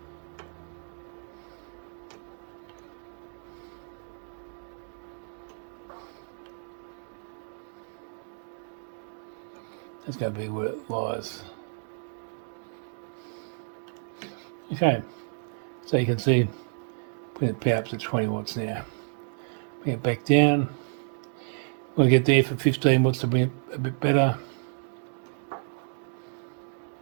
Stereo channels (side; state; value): left; silent; 58 dB below the other